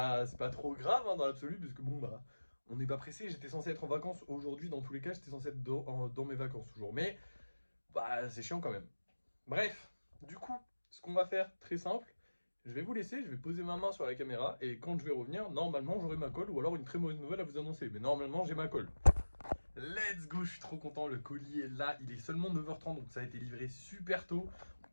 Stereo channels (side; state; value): both; inverted; correlation -1.00